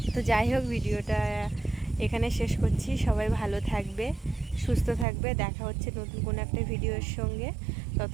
তো যাই হোক, ভিডিওটা এখানে শেষ করছি। সবাই ভালো থাকবে, সুস্থ থাকবে, দেখা হচ্ছে নতুন কোনো একটা ভিডিওর সঙ্গে।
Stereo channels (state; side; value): drops out; left; at 5.1 s